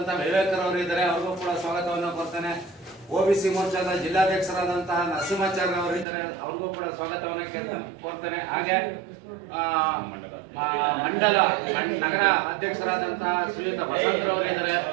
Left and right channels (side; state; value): left; drops out; at 6.1 s